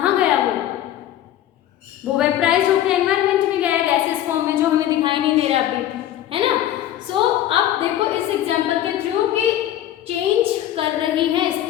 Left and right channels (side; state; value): right; quieter; 12.2 dB